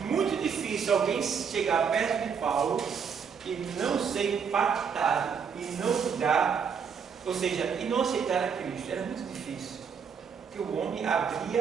muito difícil alguém chegar perto de Paulo e não ser impactado e não mudar, ou seja, e não aceitar a Cristo. Era muito difícil, porque o homem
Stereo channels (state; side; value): quieter; left; 6.6 dB